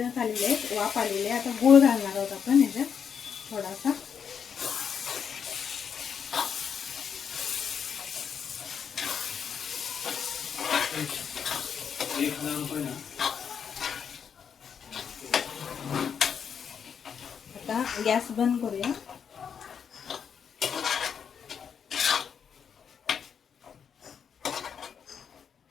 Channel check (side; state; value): right; quieter; 7.3 dB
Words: झालेले आहेत, वाफ आलेली आहे. आता गूळ घालणार आहोत आपण ह्याच्यात थोडासा. आता गॅस बंद करूया.